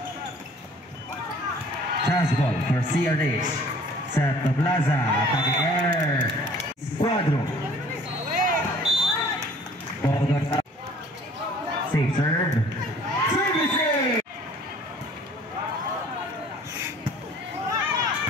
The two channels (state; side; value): normal; both; correlation 0.52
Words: Chance ball for CRH. Set to Plaza. Attacking air. Squadron. Ball goes up. Safe serve. Services.